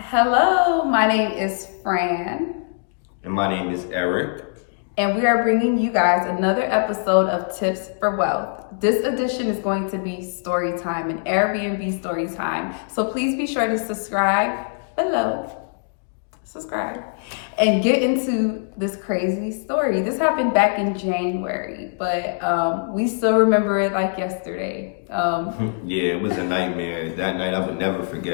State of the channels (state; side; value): silent; right; digital silence